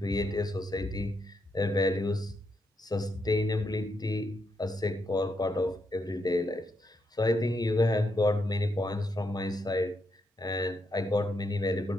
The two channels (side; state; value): both; normal; correlation 0.80